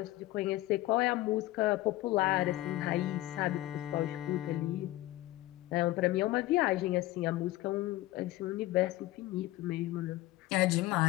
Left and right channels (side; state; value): right; quieter; 17.2 dB